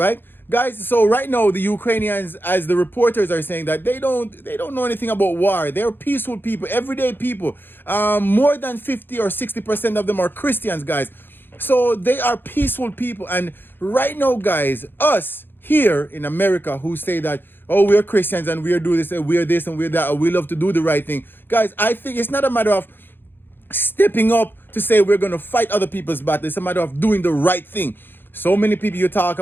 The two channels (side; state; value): right; late; 0.099 ms